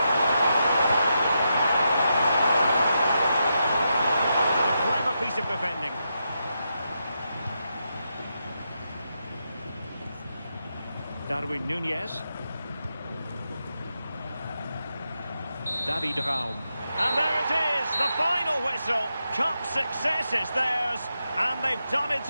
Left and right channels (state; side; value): inverted; both; correlation -0.85